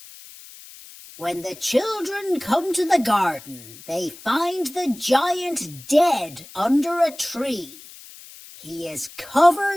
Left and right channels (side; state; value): left; noise; hiss, 19 dB below the sound